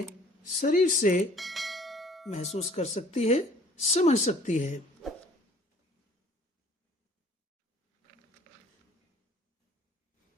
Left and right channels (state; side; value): normal; both; correlation 0.53